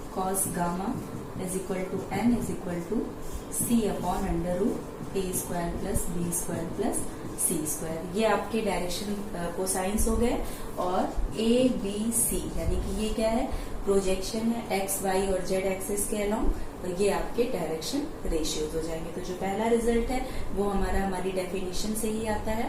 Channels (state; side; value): identical; both; correlation 1.00